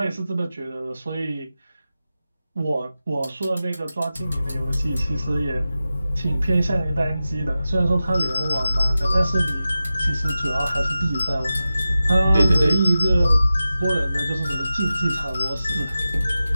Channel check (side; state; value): both; inverted; correlation -0.94